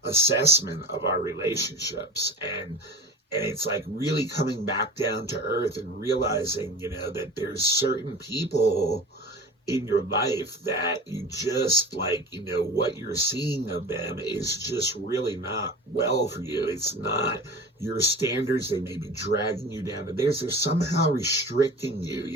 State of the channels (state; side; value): normal; both; correlation 0.35